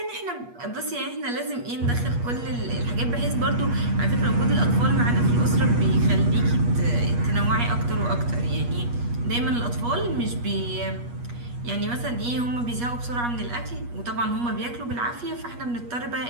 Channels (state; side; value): late; left; 8.3 ms